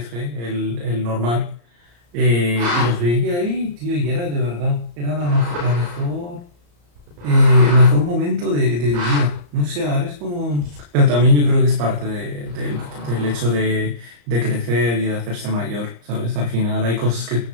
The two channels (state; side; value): late; left; 34 ms